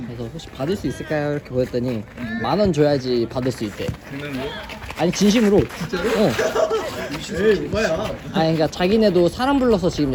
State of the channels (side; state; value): both; identical; correlation 1.00